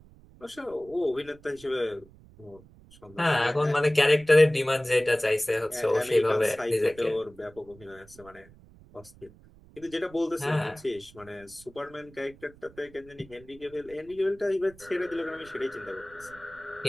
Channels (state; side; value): noise; right; rumble, 24 dB below the sound